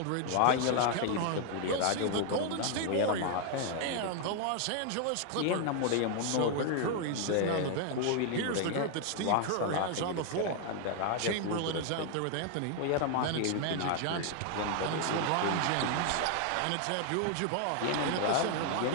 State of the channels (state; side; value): different; both; correlation 0.00